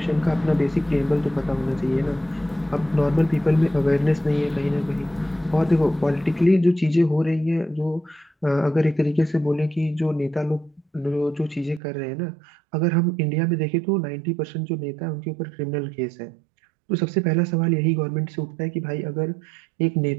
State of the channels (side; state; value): left; drops out; at 11.8 s